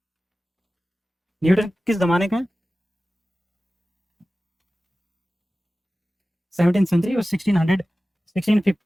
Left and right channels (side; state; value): both; normal; correlation 0.96